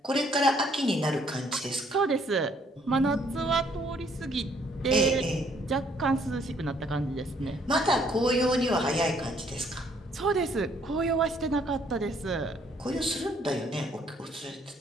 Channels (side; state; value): both; normal; correlation 0.65